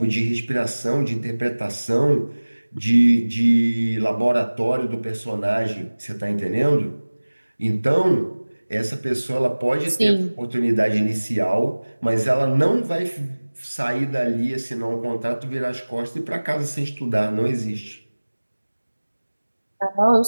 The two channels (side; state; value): both; inverted; correlation -1.00